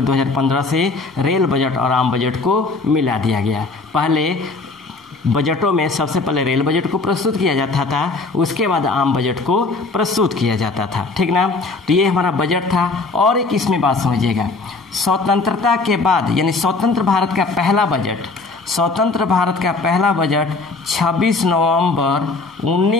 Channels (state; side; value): quieter; right; 3.7 dB